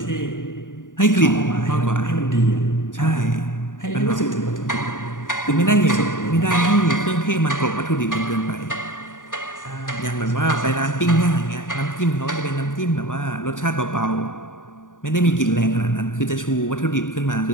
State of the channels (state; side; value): late; right; 0.88 ms